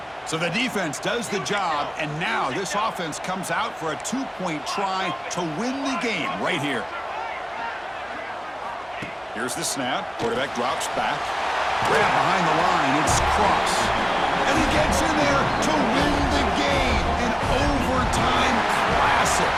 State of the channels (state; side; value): identical; both; correlation 1.00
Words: So the defense does the job, and now this offense comes out for a 2-point try to win the game right here. Here's the snap. Quarterback drops back. Grab behind the line. It's Cross. And he gets in there to win the game. An overtime classic.